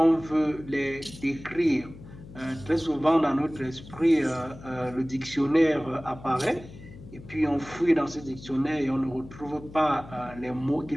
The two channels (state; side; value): noise; left; hum, 17 dB below the sound